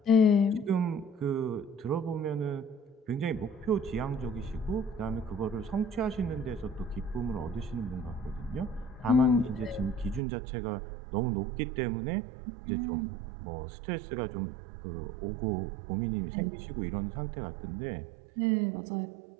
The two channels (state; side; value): drops out; left; at 10.2 s